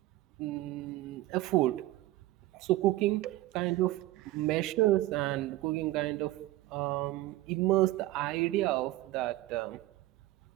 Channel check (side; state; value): left; quieter; 16.8 dB